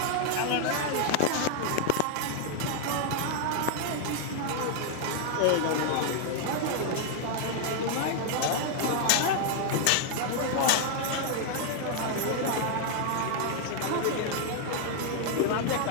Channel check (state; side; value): different; both; correlation 0.00